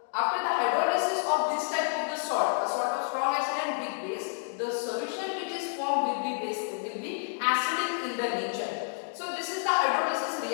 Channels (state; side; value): silent; right; 58 dB below the other